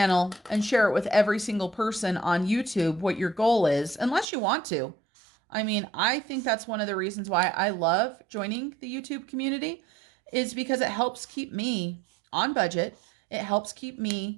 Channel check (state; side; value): drops out; left; at 4.2 s